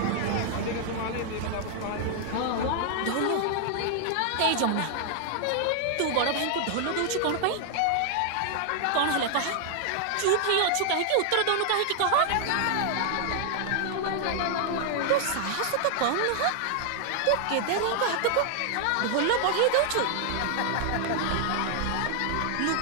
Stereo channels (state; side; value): different; both; correlation 0.00